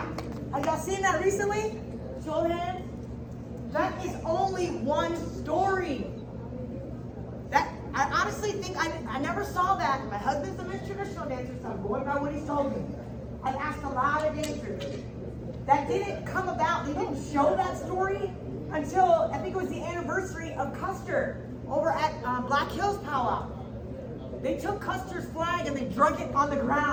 Have y'all seen that recently? Show of hands. That is only one story. I honestly think I never saw that. My husband's a traditional dancer, so I'm going by what he's told me. I've asked a lot of dancers. That didn't come about. They didn't show that story until I think it was the anniversary of Custer over at Black Hills Pow Wow. They took Custer's flag and they drug it on the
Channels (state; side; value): identical; both; correlation 1.00